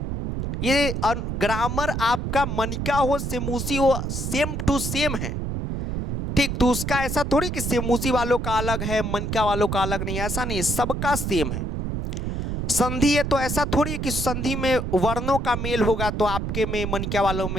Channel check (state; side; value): noise; right; rumble, 3 dB below the sound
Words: ये ग्रामर आपका मनिका हो सेमूसी हो, सेम टू सेम है, ठीक। तो उसका ऐसा थोड़ी कि सेमूसी वालों का अलग है मनिका वालों का अलग नहीं, ऐसा नहीं, सबका सेम है। संधि है तो ऐसा थोड़ी कि संधि में वर्णों का मेल होगा तो आपके में मनिका वालों